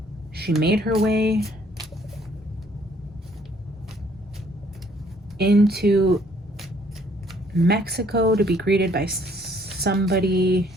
she made her way into Mexico to be greeted by somebody,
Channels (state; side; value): normal; both; correlation 0.63